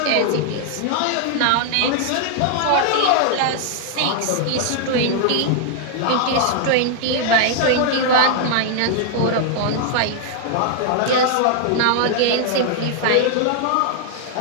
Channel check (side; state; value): both; different; correlation 0.00